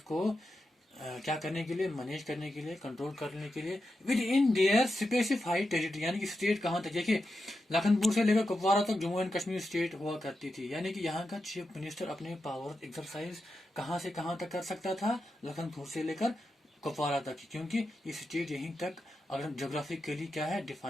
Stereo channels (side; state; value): both; normal; correlation 0.88